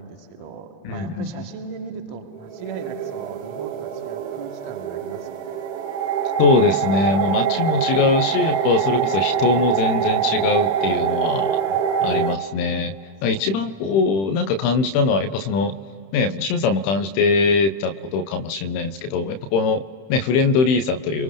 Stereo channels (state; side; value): late; right; 31 ms